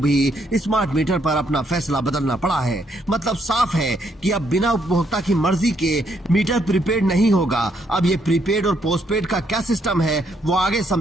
स्मार्ट मीटर पर अपना फैसला बदलना पड़ा है। मतलब साफ है कि अब बिना उपभोक्ता की मर्जी के मीटर प्रीपेड नहीं होगा। अब ये प्रीपेड और पोस्टपेड का क्या सिस्टम है वो आगे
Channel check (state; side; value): normal; both; correlation 0.73